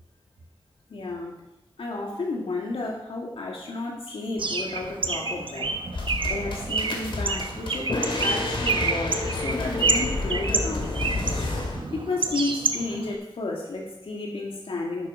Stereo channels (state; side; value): normal; both; correlation 0.26